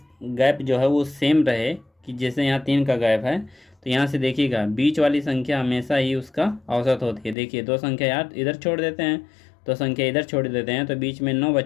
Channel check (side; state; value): right; drops out; at 7.4 s